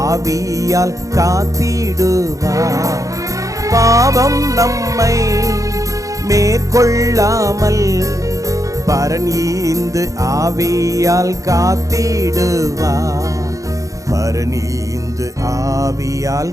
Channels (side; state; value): left; late; 0.16 ms